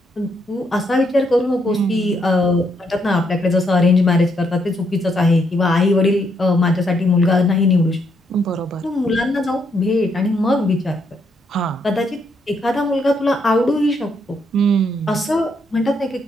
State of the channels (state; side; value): normal; both; correlation 0.75